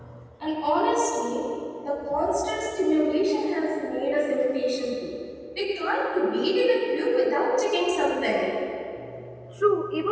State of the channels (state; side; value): identical; both; correlation 1.00